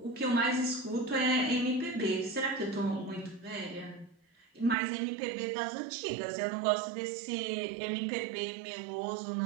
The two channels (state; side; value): drops out; left; at 4.8 s